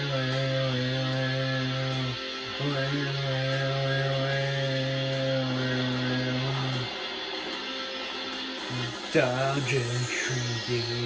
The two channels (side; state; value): both; identical; correlation 1.00